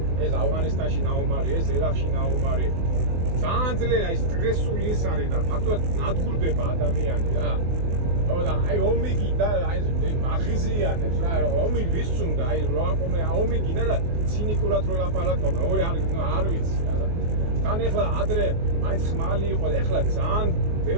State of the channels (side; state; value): left; late; 24 ms